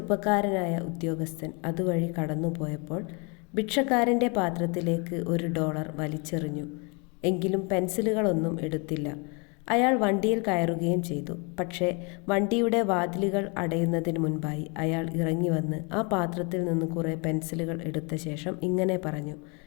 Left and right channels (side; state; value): right; quieter; 32.4 dB